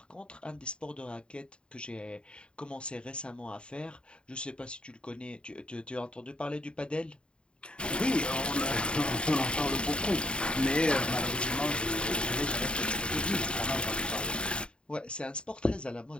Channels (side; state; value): right; late; 0.053 ms